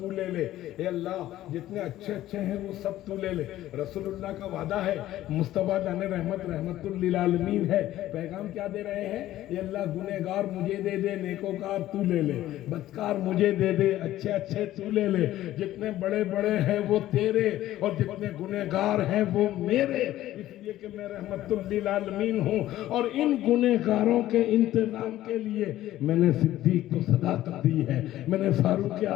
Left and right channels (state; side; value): quieter; right; 14.2 dB